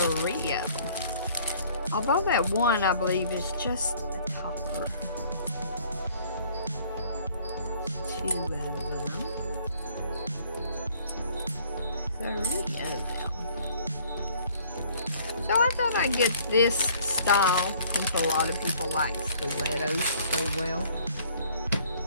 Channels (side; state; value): both; inverted; correlation -0.57